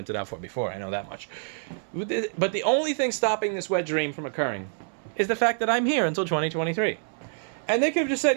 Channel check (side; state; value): left; silent; 60 dB below the other